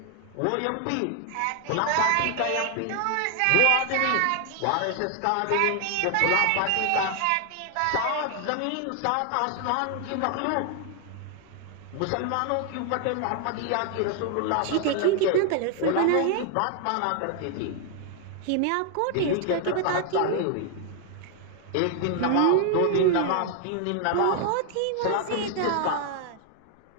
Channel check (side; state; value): both; different; correlation 0.00